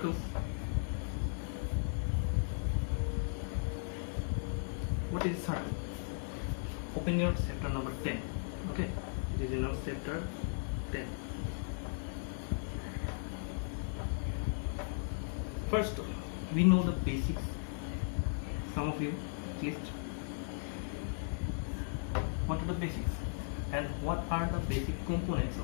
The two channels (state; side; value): silent; right; digital silence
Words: what is circle? Open your chapter number 10. Okay, this is your chapter 10. First, we know the basics. Some of you at least. What are the basics? And what are the basic components